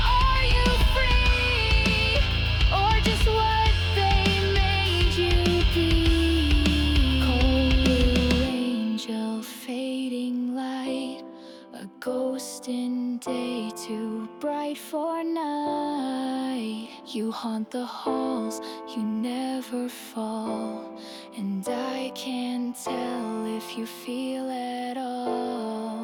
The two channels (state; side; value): identical; both; correlation 1.00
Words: are you free? Or just what they made you be? Cold blue angel, fading light, a ghost in day, too bright for night. You haunt the halls, you never fall, and I can't tell if you feel at